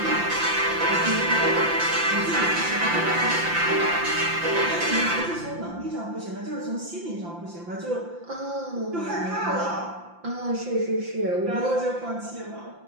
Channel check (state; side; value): late; left; 5.8 ms